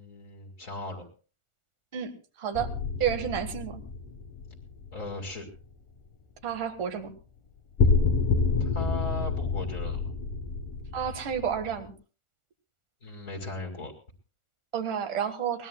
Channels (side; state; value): right; late; 1.4 ms